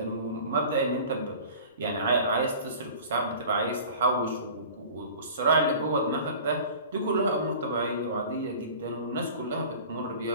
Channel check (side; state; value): both; inverted; correlation -0.42